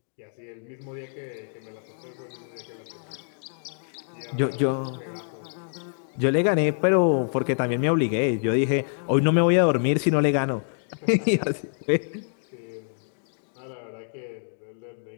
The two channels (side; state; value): right; silent; digital silence